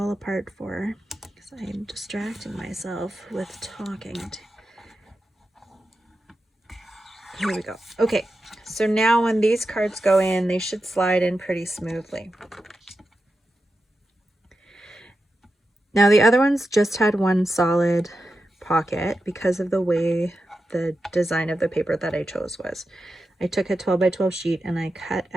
apart for because I'm distracting myself with talking. Here we go. Okay, so now when these cards go in, they should slide in pretty smoothly. Now the other ones just had one solid pocket because of the way the design of the paper that I chose was. I took a 12 by 12 sheet and I cut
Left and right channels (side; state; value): both; normal; correlation 0.90